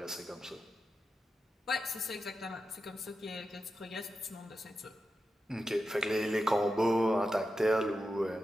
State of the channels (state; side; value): normal; both; correlation 0.90